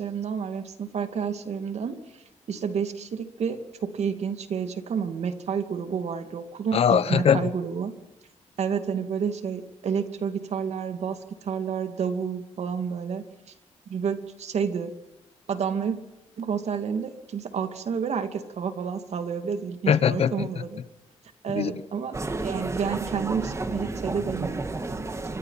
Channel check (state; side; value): normal; both; correlation 0.54